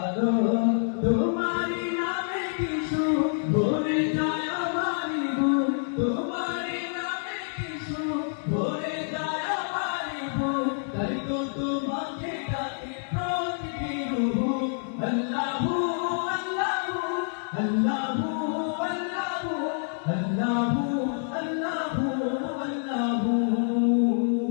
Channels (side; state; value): right; silent; digital silence